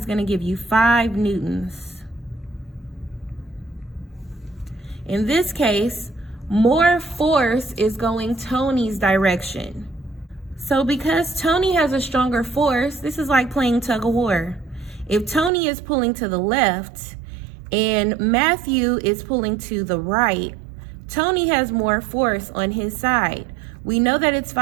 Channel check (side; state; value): left; drops out; at 15.5 s